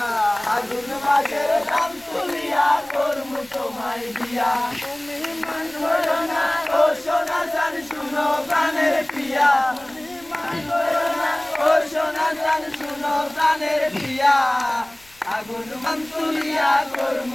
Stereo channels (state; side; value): noise; left; rumble, 28 dB below the sound